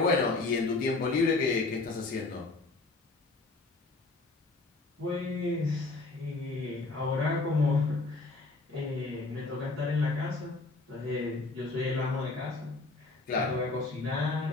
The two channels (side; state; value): right; quieter; 3.4 dB